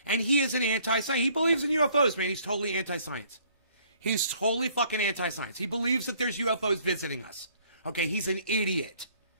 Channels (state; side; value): inverted; both; correlation -0.61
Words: And he is an anti-science. He believes in UFOs, man. He's totally anti-science. He's totally fucking anti-science. He believes that there's UFOs visiting us. Okay, he's an idiot.